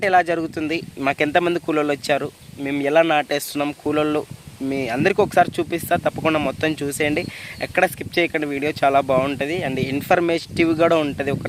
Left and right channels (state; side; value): identical; both; correlation 1.00